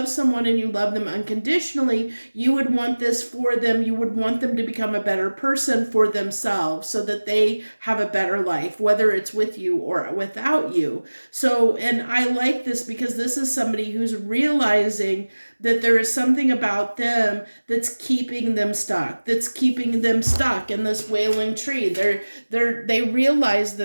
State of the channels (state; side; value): inverted; both; correlation -1.00